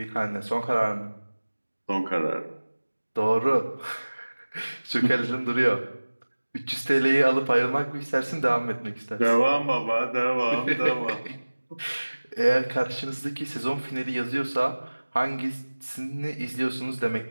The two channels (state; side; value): inverted; both; correlation -1.00